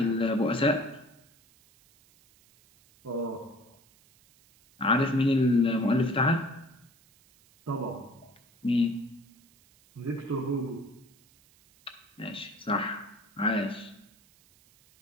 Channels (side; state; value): right; noise; hiss, 30 dB below the sound